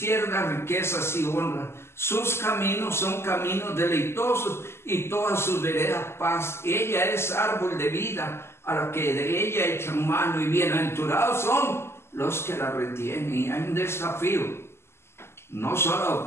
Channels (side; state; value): right; late; 0.12 ms